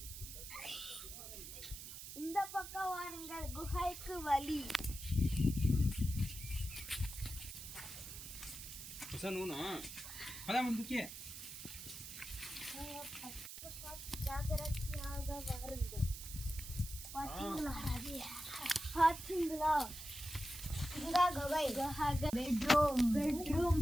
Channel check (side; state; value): right; noise; hiss, 10 dB below the sound